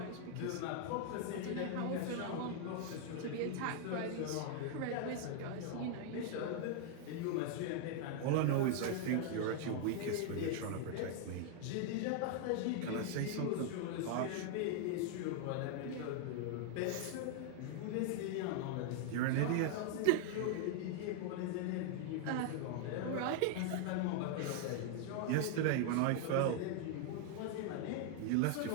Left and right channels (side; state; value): both; different; correlation 0.00